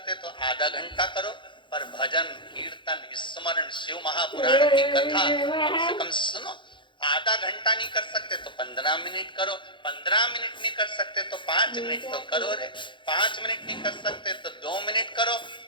तो आधा घंटा करो। पर भजन कीर्तन स्मरण शिव महापुराण की कथा कम से कम सुनो। आधा घंटा नहीं कर सकते तो 15 मिनट करो, 15 मिनट नहीं कर सकते तो 5 मिनट तो करो रे, 5 मिनट नहीं कर सकते तो 2 मिनट करो,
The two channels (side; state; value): right; late; 0.23 ms